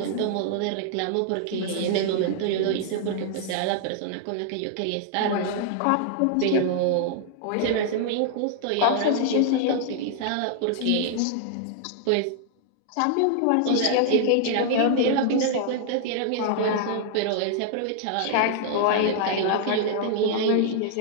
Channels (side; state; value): both; different; correlation -0.01